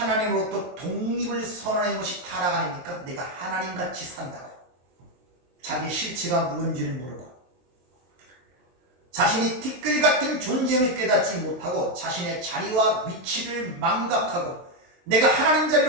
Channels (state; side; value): late; left; 23 ms